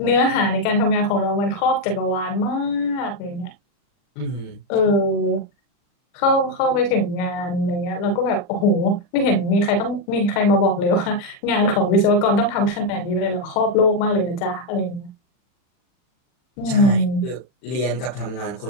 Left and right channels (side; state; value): right; late; 40 ms